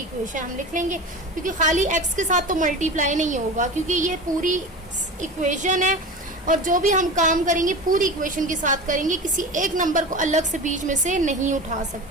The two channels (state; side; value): normal; both; correlation 0.30